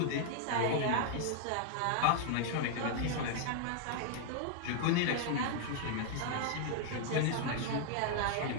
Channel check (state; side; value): different; both; correlation 0.00